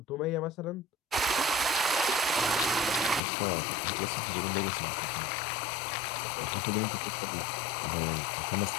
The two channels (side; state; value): right; drops out; at 3.2 s